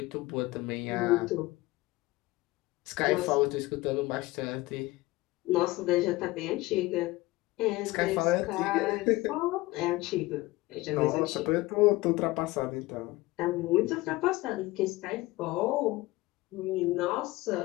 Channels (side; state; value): right; quieter; 19.8 dB